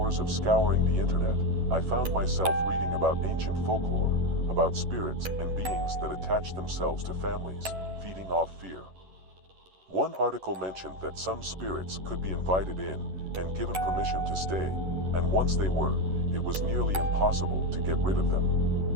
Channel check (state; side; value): late; left; 11 ms